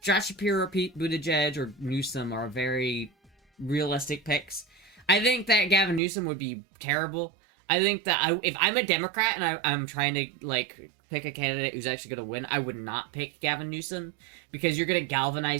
Josh Shapiro, Pete Buttigieg, or Newsom are very realistic picks. I think that Gavin Newsom would be terrible. I think that if I'm a Democrat and I'm trying to, like, pick a candidate who's actually going to win, I would not pick Gavin Newsom, because you're going to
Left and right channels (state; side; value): drops out; left; at 6.0 s